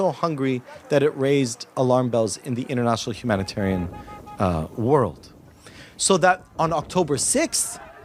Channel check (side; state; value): both; identical; correlation 1.00